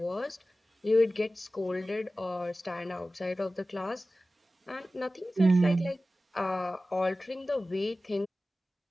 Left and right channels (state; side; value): normal; both; correlation 0.96